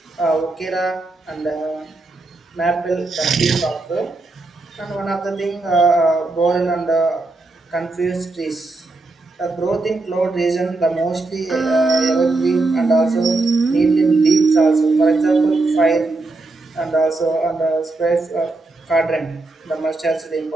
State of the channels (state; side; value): quieter; left; 3.3 dB